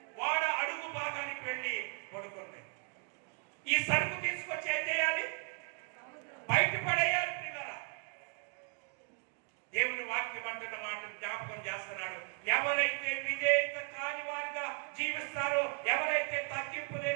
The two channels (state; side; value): quieter; left; 37.1 dB